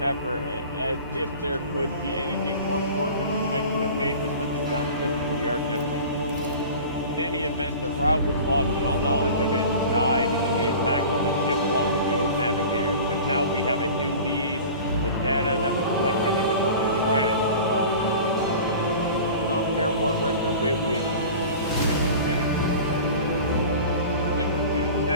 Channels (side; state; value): both; inverted; correlation -0.39